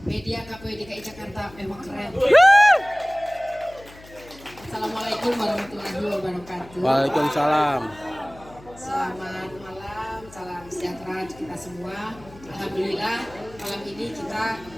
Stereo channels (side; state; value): left; noise; hum, 21 dB below the sound